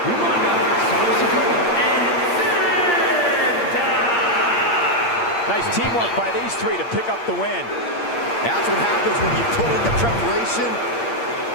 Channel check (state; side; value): late; right; 8.6 ms